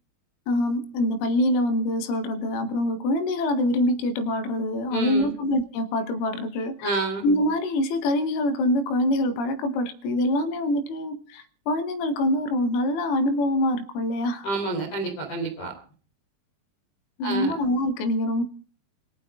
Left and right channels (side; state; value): right; late; 21 ms